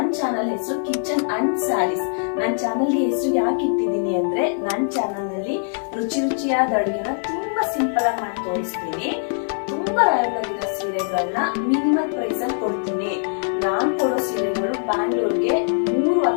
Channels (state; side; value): silent; right; 56 dB below the other